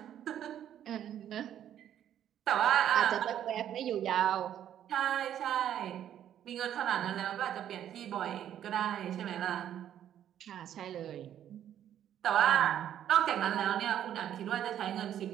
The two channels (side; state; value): left; quieter; 10.6 dB